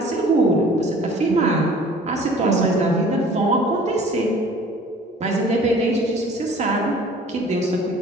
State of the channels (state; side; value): normal; both; correlation 0.49